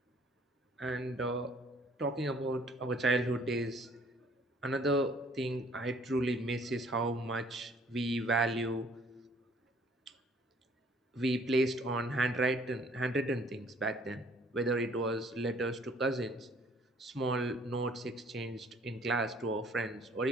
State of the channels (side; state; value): both; normal; correlation 0.59